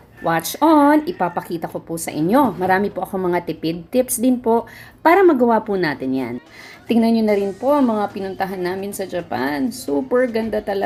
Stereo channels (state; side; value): identical; both; correlation 1.00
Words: Watch on! Ipapakita ko po sa inyo. Marami po akong mga tipid tips din po para magawa po natin yan. Tingnan nyo na rin po ang mga pinuntahan namin sa Japan. Super ganda